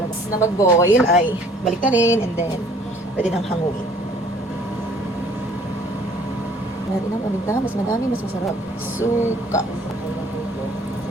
Na mag-boil ay balik na rin and then pwede nang hanguin. Natin ang paminta, mas madami, mas masarap. Suka.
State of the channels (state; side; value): normal; both; correlation 0.56